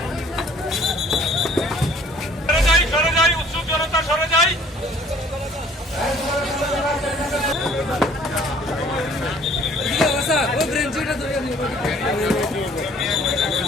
সরে যাই, উৎসুক জনতা সরে যাই।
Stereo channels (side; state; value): both; normal; correlation 0.56